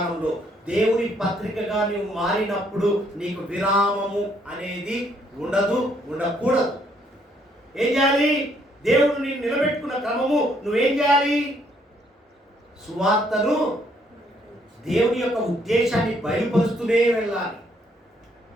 దేవుని పత్రికగా నువ్వు మారినప్పుడు నీకు విరామము అనేది ఉండదు, ఉండకూడదు. ఏం చేయాలి? దేవుడు నేను నిలబెట్టుకున్న క్రమము నువ్వేం చేయాలి? సువార్తను, దేవుని యొక్క ఉద్దేశాన్ని బయలుపరుస్తూనే వెళ్ళాలి.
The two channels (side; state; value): both; normal; correlation 0.69